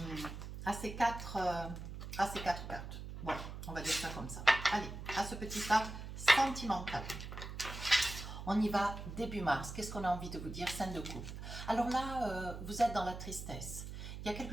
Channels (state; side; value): noise; right; hum, 9 dB below the sound